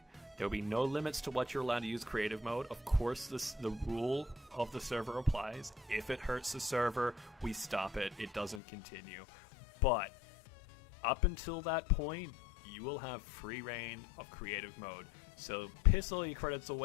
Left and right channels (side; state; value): right; drops out; at 8.6 s